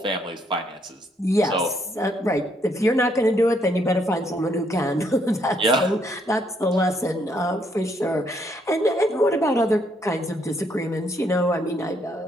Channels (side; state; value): both; normal; correlation 0.72